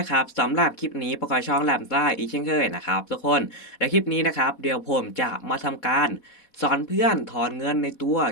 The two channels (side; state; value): right; late; 4.1 ms